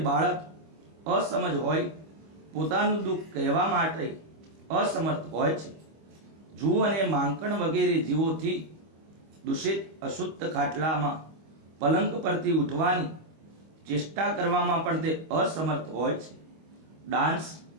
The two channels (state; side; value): late; left; 25 ms